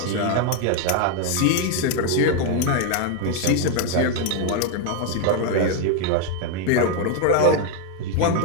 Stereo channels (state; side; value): different; both; correlation 0.01